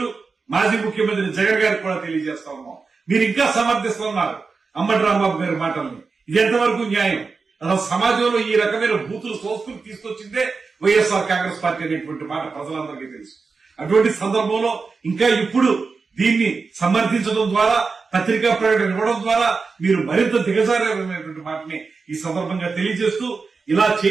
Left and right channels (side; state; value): left; quieter; 4.6 dB